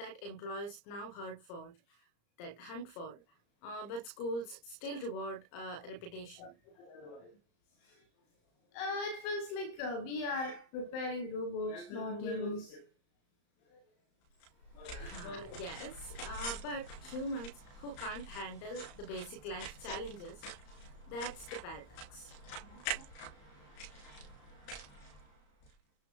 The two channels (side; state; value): right; late; 34 ms